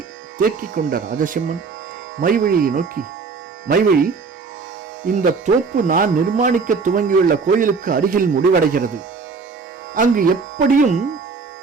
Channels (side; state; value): left; quieter; 4.8 dB